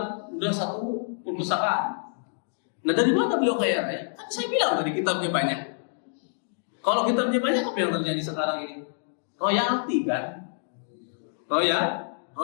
udah 1 perpustakaan. Nah, dari mana beliau kaya raya? Kan saya bilang tadi kitabnya banyak. Kalau kitabnya banyak, apa yang terjadi sekarang ini? Royalti kan?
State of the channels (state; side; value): silent; right; digital silence